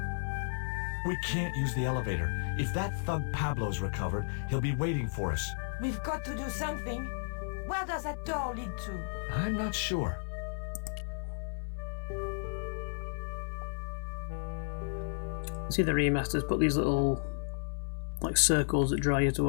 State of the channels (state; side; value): silent; right; 55 dB below the other